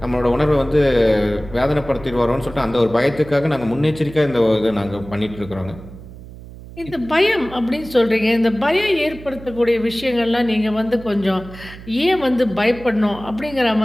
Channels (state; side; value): noise; right; hum, 16 dB below the sound